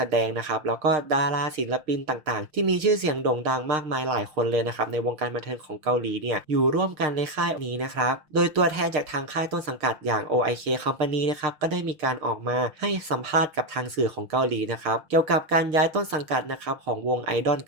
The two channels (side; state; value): left; late; 6.5 ms